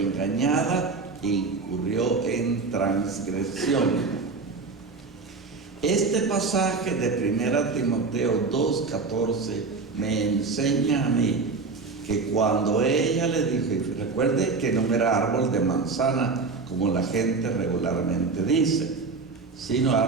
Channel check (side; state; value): left; quieter; 4.3 dB